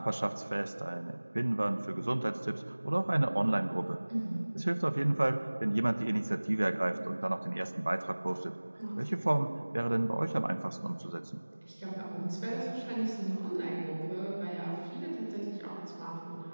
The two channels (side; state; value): both; inverted; correlation -1.00